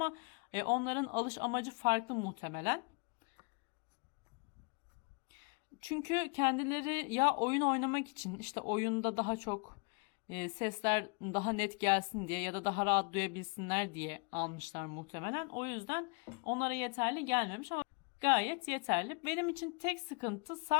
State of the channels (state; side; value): quieter; right; 32.5 dB